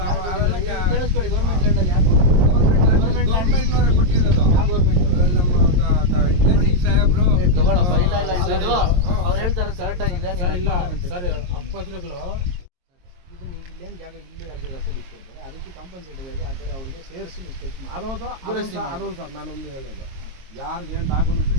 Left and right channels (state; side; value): late; left; 22 ms